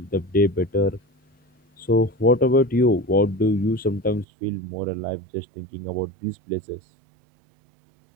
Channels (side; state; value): left; drops out; at 4.2 s